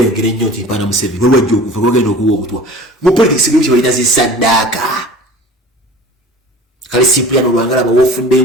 ngere nnyo nti mpana Museveni waliwo jokufa gwagenda okuwa obutwa. Mu politics byo balina zisadaka. Kali Cipriano Lwanga laba wofudde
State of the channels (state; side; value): normal; both; correlation 0.42